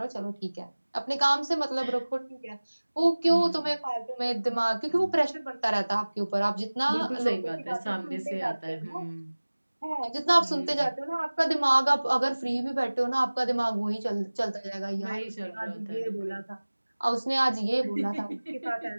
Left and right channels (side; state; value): both; inverted; correlation -1.00